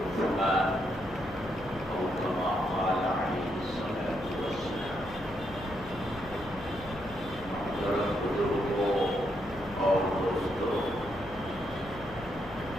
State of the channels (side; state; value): left; noise; hum, 16 dB below the sound